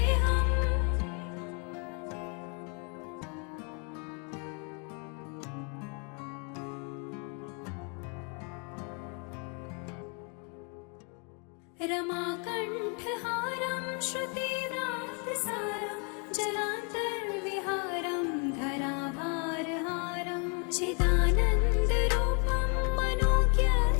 रमाकण्ठहारं श्रुतिव्रातसारं जरान्तर्विहारं धरावारहारं चिदानन्दरूपं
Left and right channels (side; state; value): right; quieter; 35.6 dB